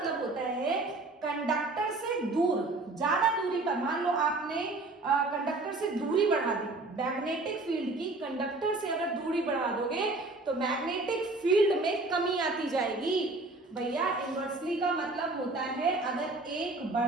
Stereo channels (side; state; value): left; quieter; 3.1 dB